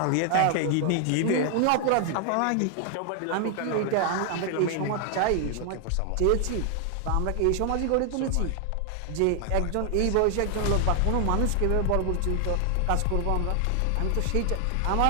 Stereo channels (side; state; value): both; different; correlation 0.00